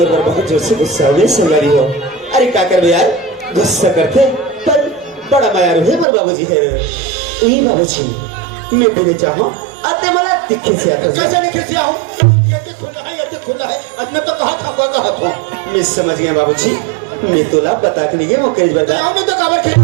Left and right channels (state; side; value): drops out; left; at 6.1 s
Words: पर बहुत जोर से गुस्सा हुए संगारी हो अरे क्या कर यार गुस्सा करते पर बड़ा मायारू है मोर बाबूजी है ये बाबूजी मैं तेरे चाहूं अते मला दिखे से आता कैसे दिखे से आऊं ये खुला है अब मैं तो कहा था मैं समझ गया बाबूजी मैं तोला बता के नहीं वो केज बजा मैं तो खबर थे